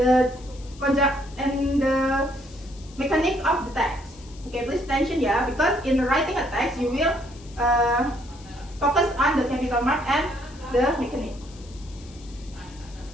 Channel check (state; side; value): noise; left; hiss, 23 dB below the sound